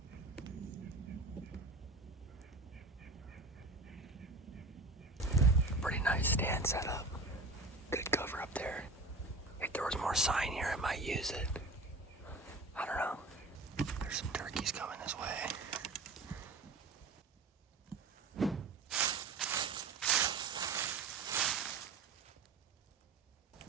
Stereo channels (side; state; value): left; quieter; 3.3 dB